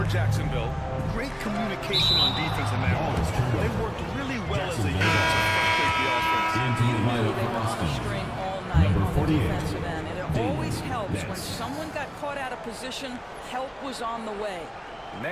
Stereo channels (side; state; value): both; identical; correlation 1.00